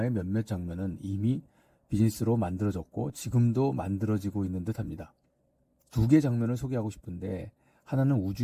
몇몇 장면은 이미 비즈니스로 만들어졌고 지금도 만들어지고 있는 듯합니다. 두 개의 장면을 소개하고 싶은데 하나는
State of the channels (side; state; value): both; identical; correlation 1.00